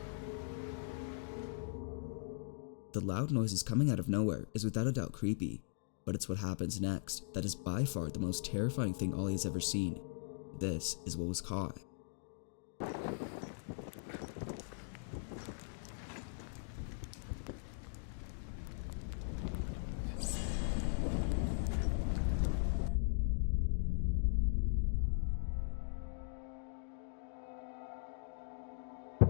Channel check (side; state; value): right; silent; digital silence